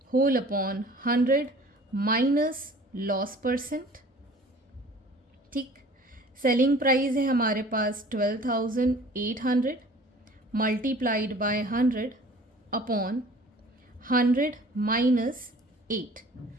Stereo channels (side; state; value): both; normal; correlation 0.48